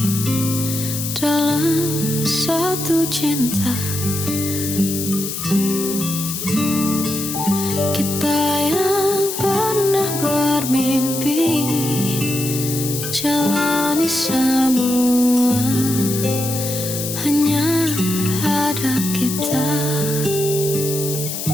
dalam satu cinta. Kita yang pernah bermimpi jalani semua, hanya ada kita.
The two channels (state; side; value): noise; left; hiss, 5 dB below the sound